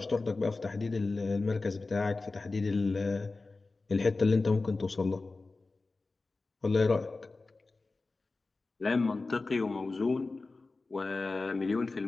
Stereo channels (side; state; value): right; quieter; 3.6 dB